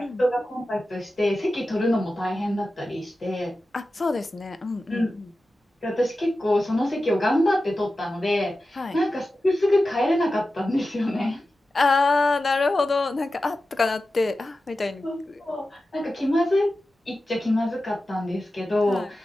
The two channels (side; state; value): both; normal; correlation 0.93